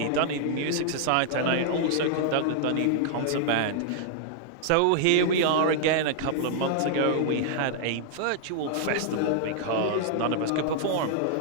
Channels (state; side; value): different; both; correlation -0.01